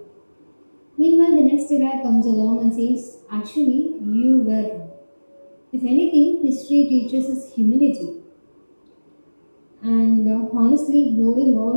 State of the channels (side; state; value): both; inverted; correlation -1.00